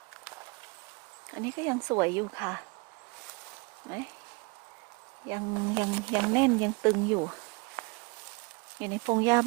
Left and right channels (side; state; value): left; quieter; 29.0 dB